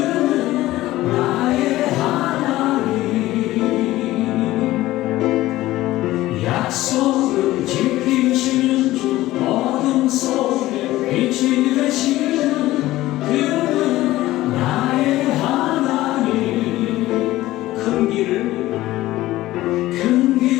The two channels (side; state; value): right; quieter; 16.5 dB